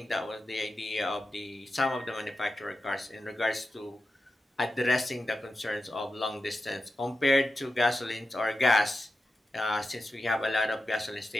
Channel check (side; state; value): both; normal; correlation 0.91